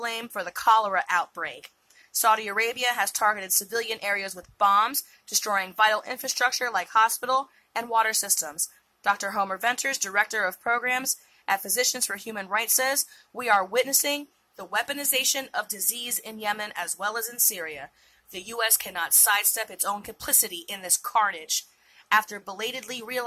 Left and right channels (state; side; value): identical; both; correlation 1.00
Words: for the cholera outbreak. Saudi Arabia has targeted civilian areas with bombs, destroying vital infrastructure like hospital and water systems. Dr. Homer Venters, Director of Programs at Physicians for Human Rights, says, "We are witnessing the weaponization of disease in Yemen as well as in Syria. The U.S. cannot sidestep its own complicity in this carnage. After belatedly